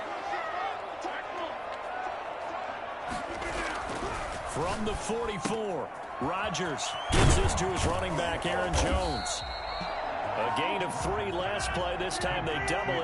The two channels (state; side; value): identical; both; correlation 1.00